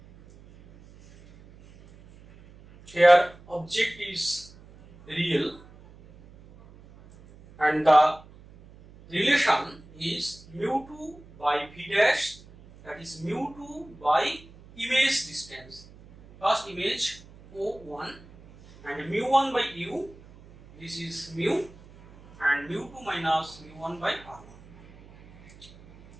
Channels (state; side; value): noise; right; hum, 22 dB below the sound